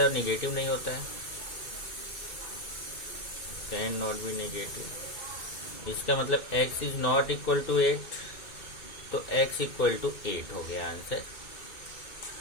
है निगेटिव नहीं होता है, कैन नॉट बी निगेटिव। इसका मतलब x is not equal to 8, तो x इक्वल टू 8 हो गया आंसर।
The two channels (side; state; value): right; late; 2.2 ms